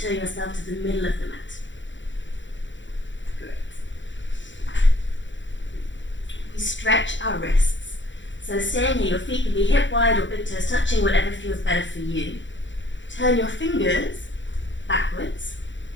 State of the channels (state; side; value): late; right; 0.54 ms